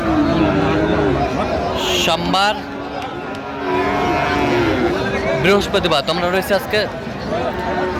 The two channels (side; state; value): both; identical; correlation 1.00